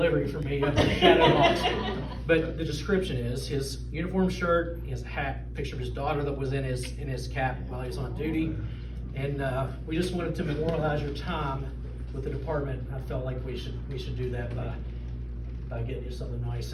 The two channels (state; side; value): identical; both; correlation 1.00